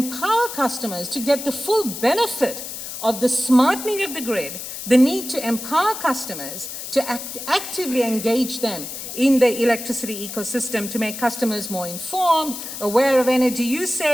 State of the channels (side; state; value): left; noise; hiss, 8 dB below the sound